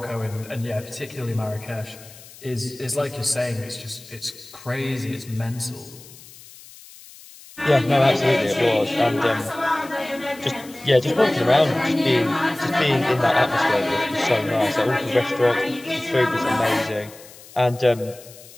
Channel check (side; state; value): left; noise; hiss, 20 dB below the sound